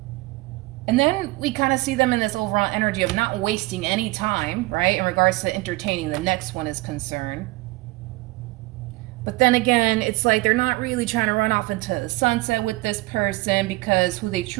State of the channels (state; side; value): quieter; left; 21.3 dB